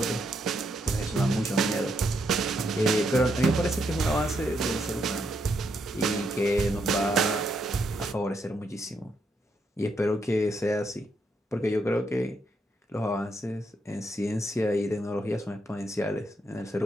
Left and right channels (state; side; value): normal; both; correlation 0.78